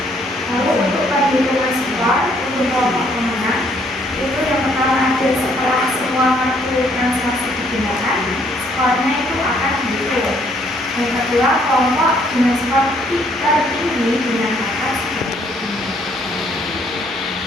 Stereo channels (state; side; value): normal; both; correlation 0.66